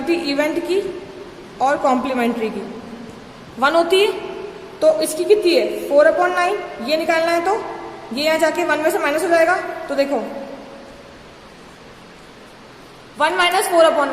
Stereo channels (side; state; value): both; identical; correlation 1.00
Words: इवेंट की और कॉम्प्लीमेंट्री की 1 होती है। तो इसकी कितनी है? 4/9। ये निकालना है तो ये यहाँ जाके 1 में से माइनस हो जाएगा। तो देखो 1 -